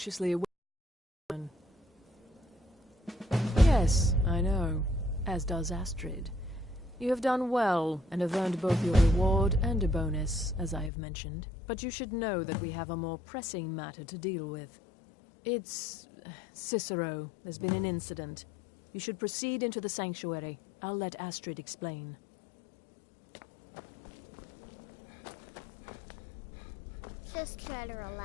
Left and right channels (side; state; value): right; drops out; at 10.9 s